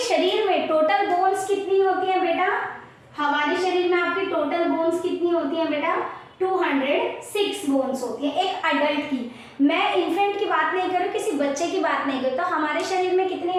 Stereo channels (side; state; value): both; identical; correlation 1.00